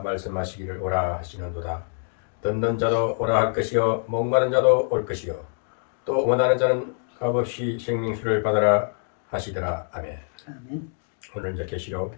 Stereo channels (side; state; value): right; silent; digital silence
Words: 오라 하시는도다. 듣는 자도 오라 할 것이요 목마른 자도 올 것이요 또 원하는 자는 값없이 생명수를 받아라 하시더라. 아멘. 오늘 이제 계시록